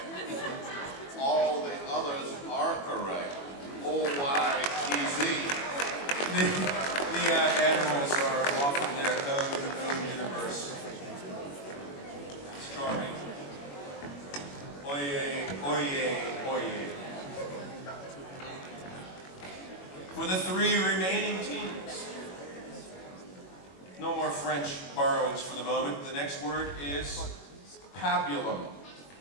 All the others are correct. O-Y-E-Z. The animals are off in their own universe. It's charming. Oyez, oyez, oyez. For the three remaining teams, no more French borrowings for the moment. The next word is pabulum.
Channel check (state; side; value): late; right; 21 ms